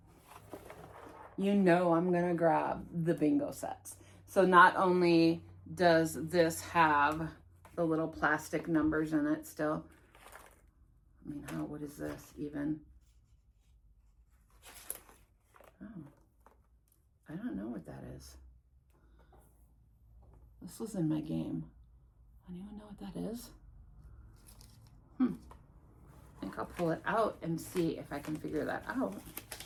You know I'm gonna grab the bingo sets. So not only does this have the little plastic numbers in it still. I mean, what is this even? Oh, I don't know what that is. This was in my game. Anyone know what that is? I think I'll pull it out and see if I can figure that out.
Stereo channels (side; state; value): both; identical; correlation 1.00